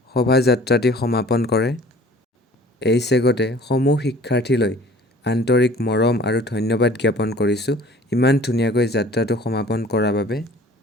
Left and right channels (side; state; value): both; normal; correlation 0.49